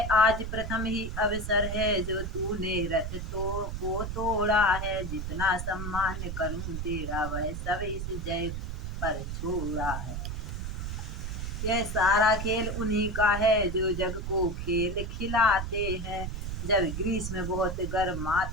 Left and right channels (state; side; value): noise; right; rumble, 4 dB below the sound